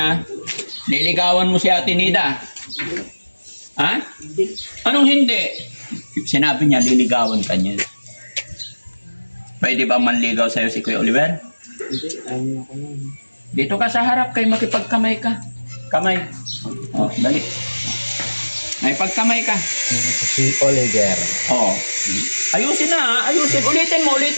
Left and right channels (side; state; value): both; inverted; correlation -1.00